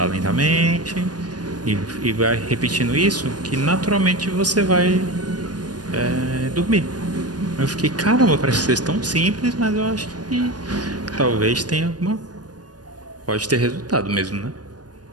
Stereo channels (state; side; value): late; left; 0.69 ms